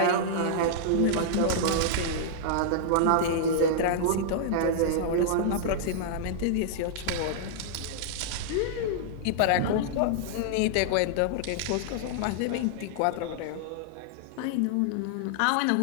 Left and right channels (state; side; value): different; both; correlation -0.01